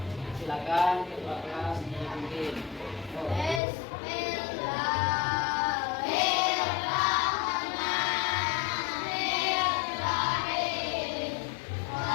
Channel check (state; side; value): drops out; right; at 3.6 s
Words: Silakan ketua kelas dipimpin.